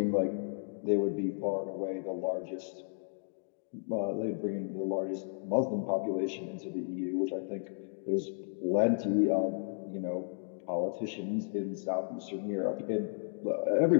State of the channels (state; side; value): silent; right; digital silence